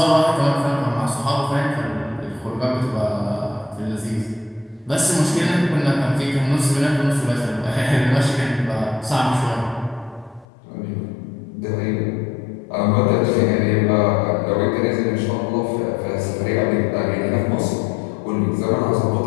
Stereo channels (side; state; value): right; drops out; at 10.5 s